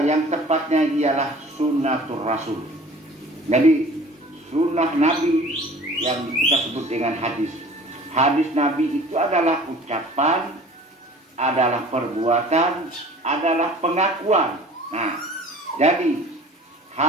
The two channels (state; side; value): normal; both; correlation 0.46